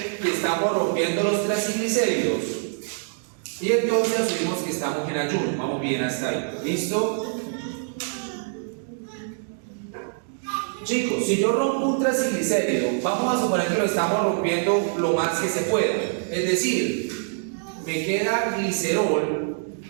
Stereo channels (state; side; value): silent; left; digital silence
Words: que estamos rompiendo los triacilglicéridos y entonces asumimos que estamos en ayuno. Vamos bien hasta ahí. ¿Listo? Chicos, si yo rompo un traciglicérido, vamos a suponer que lo estamos rompiendo lo más que se pueda. Es decir, me queda glicerol